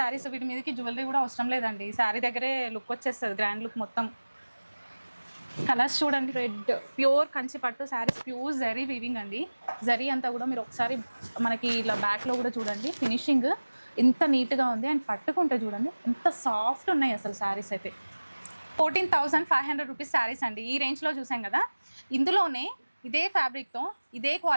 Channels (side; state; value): both; inverted; correlation -1.00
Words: వీటి మీదకి జ్యువెలరీ కూడా అవసరం లేదండి, శారీ దగ్గరే లుక్ వచ్చేస్తుంది, గ్రాండ్ లుక్ మొత్తం. కలర్స్ చూడండి, రెడ్ ప్యూర్ కంచి పట్టు శారీస్, ప్యూర్ జరీ వీవింగ్ అండి. జరీ అంతా కూడా మీరు ఒకసారి మనకి ఇలా బ్యాక్లో కూడా చూడండి, ఫినిషింగ్ ఎంత నీట్గా ఉంది. అండ్ పట్టుకుంటే చూడండి ఎంత సాఫ్ట్ ఉన్నాయి అసలు శారీస్ అయితే. 14,500 రూపీస్ శారీస్ అండి. ఈ రేంజ్లో చూసాం కదా. ఇందులోనే ఇదే ఫ్యాబ్రిక్తో ఇదే